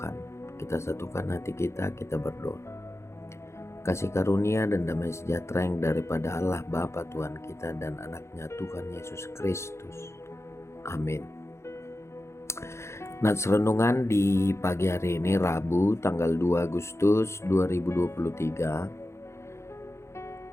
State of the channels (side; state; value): right; late; 0.13 ms